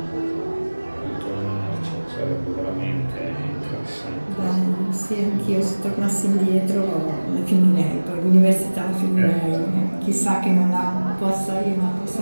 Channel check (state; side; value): inverted; both; correlation -1.00